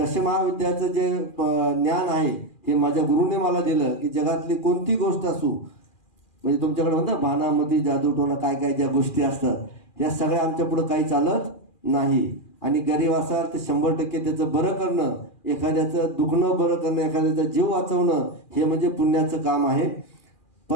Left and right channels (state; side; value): late; right; 2.4 ms